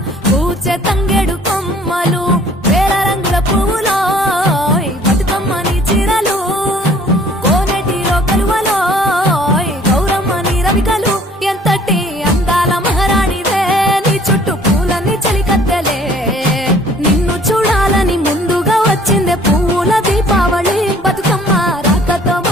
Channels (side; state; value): both; normal; correlation 0.55